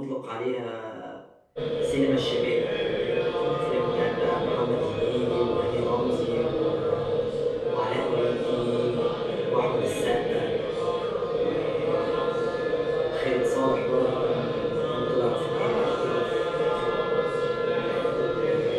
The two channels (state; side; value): identical; both; correlation 1.00